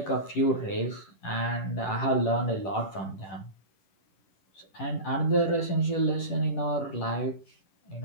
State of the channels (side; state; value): right; late; 10 ms